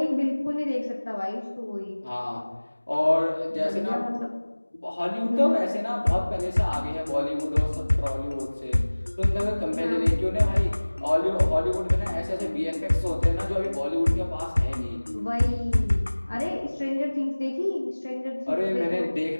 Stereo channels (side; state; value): both; inverted; correlation -1.00